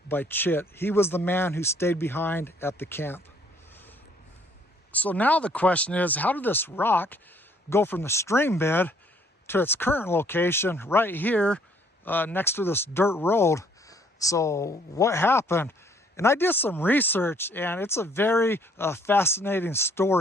by Chit. He was the man who stayed behind at the camp. So now the question is, how did this rock go from the stream bed to its current location right here next to this dirt road? So what happened? And I did some research, and it's a very fascinating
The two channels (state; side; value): normal; both; correlation 0.63